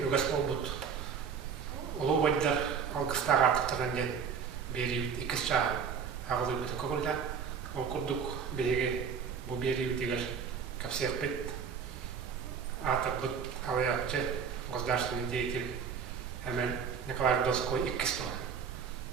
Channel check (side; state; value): left; quieter; 6.7 dB